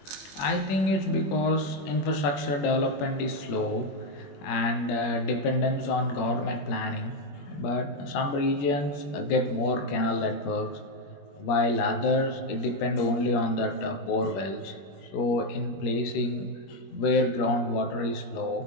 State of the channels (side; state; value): right; late; 21 ms